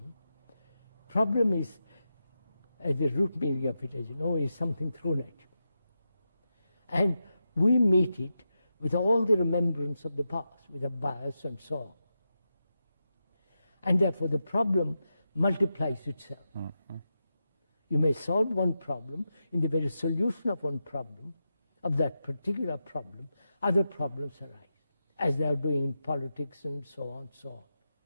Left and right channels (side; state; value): both; inverted; correlation -0.88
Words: Problem is, at the root meaning of it, as you know, is something thrown at you. And we meet it with all the remembrance of the past, with a bias and so on. And therefore the problem multiplies itself. Mm-hmm. You may solve one problem, in the very solution of one problem, of that particular problem, other problems arise, as they are doing in politics and so on,